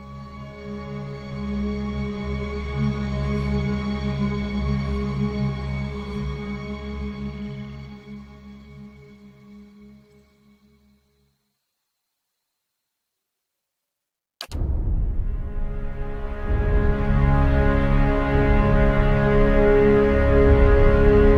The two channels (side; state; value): both; identical; correlation 1.00